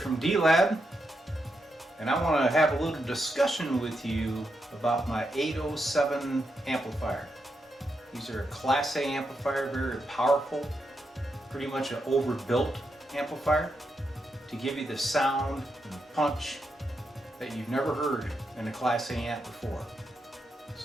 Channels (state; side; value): normal; both; correlation 0.84